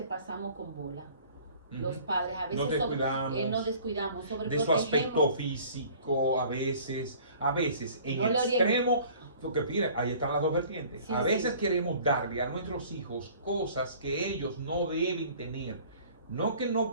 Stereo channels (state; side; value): inverted; both; correlation -0.50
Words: pasamos con bola. Los padres a veces nos descuidamos, de su aspecto físico, a veces en no el extremo, porque mira, ahí están las dos vertientes. Sí, a veces queremos darle a nuestros hijos cosas que ellos no deben tener. No que